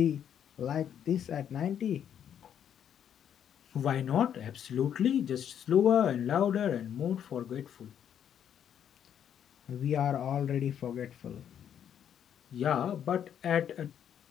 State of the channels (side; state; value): right; quieter; 9.2 dB